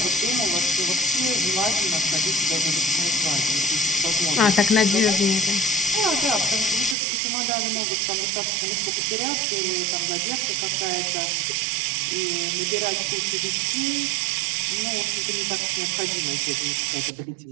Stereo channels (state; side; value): drops out; left; at 7.0 s